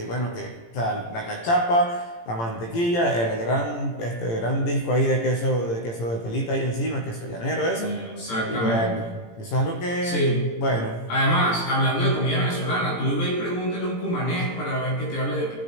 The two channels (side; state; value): right; late; 18 ms